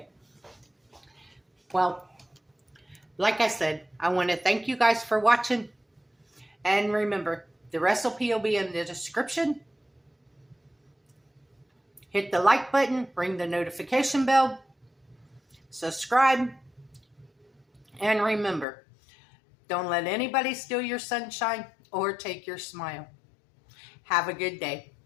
Well, like I said, I want to thank you guys for watching. And remember, the recipe will be in the description. Hit the like button, ring the notification bell, subscribe, and remember, don't let anybody steal your sunshine or take your smile. Have a good day.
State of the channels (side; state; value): right; drops out; at 18.7 s